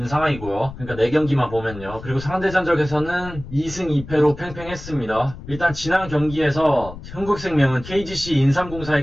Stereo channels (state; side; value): noise; left; rumble, 14 dB below the sound